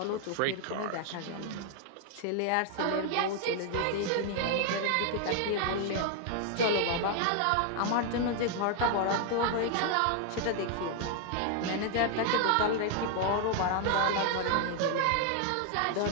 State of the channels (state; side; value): different; both; correlation 0.00